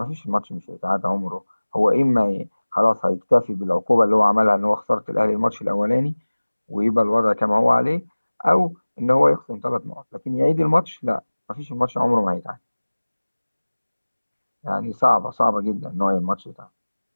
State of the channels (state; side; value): inverted; both; correlation -1.00